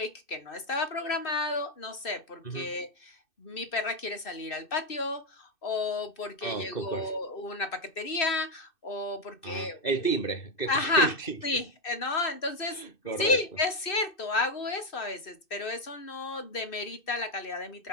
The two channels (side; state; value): right; late; 2.6 ms